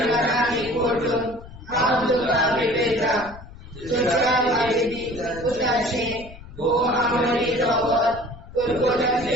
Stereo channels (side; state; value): left; noise; rumble, 17 dB below the sound